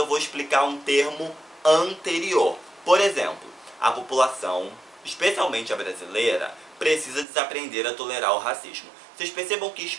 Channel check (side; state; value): left; drops out; at 7.2 s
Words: vou explicar um termo anterior. Por exemplo, a população, especialmente a brasileira, precisa desaprender a tolerar o racismo. Vocês percebam que